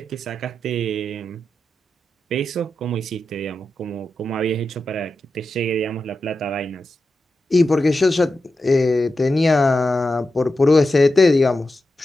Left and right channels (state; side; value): normal; both; correlation 0.90